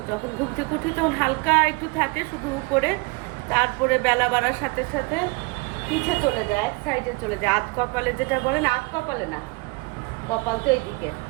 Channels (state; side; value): quieter; left; 27.7 dB